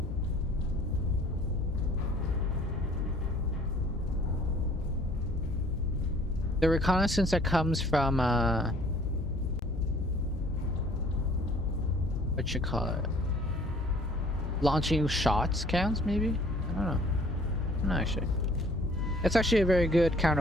The reconnaissance that comes from, what you call it? Launching shots counts, maybe? I don't know. I'm not actually. It's actually a very good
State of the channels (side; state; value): both; normal; correlation 0.54